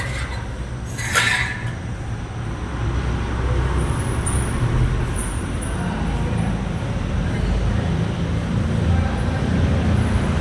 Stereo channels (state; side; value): identical; both; correlation 1.00